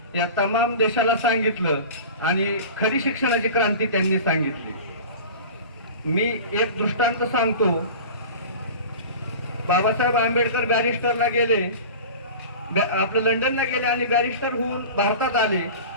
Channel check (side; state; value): both; inverted; correlation -0.36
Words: या तमाम देशाला सांगितलं आणि खरी शिक्षणाची क्रांती त्यांनी सांगितली. मी एक दृष्टांत सांगतो. बाबासाहेब आंबेडकर बॅरिस्टरला गेले, आपलं लंडनला गेले आणि बॅरिस्टर होऊन भारतात आले